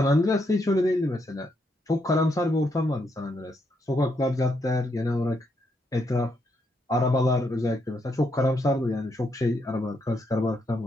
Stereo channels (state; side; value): normal; both; correlation 0.78